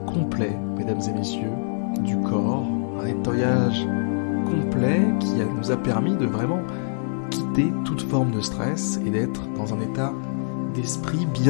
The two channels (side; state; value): right; silent; digital silence